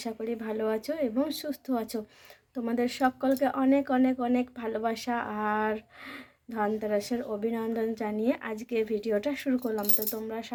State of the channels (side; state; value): both; identical; correlation 1.00